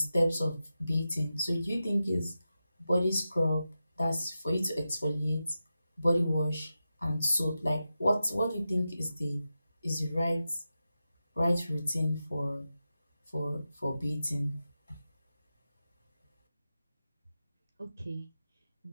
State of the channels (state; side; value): inverted; both; correlation -0.91